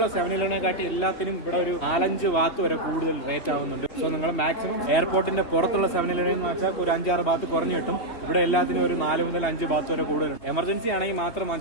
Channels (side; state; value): right; late; 3.1 ms